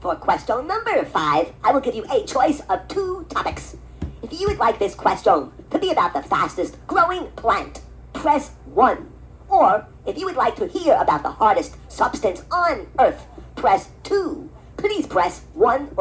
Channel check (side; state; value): both; identical; correlation 1.00